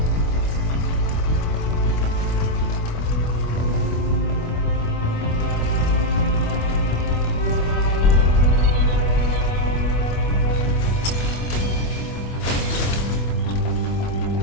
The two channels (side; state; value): right; late; 25 ms